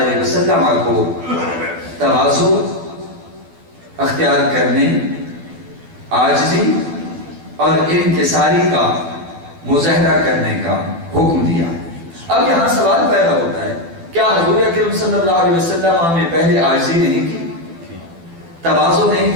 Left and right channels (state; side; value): late; left; 12 ms